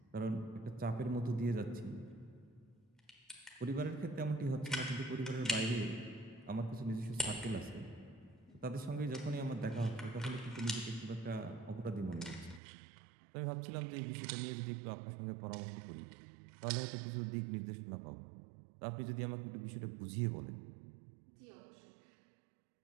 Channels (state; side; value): drops out; left; at 12.6 s